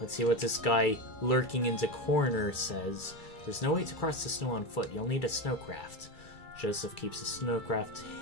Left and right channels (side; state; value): right; late; 2.3 ms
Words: see what this guy lurking in the corner says. There's no way to cross the snow on foot. You'll need a snowcraft. Joseph keeps the snowcraft